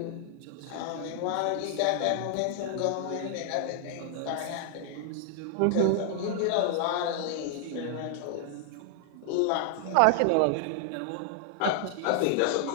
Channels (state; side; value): different; both; correlation 0.00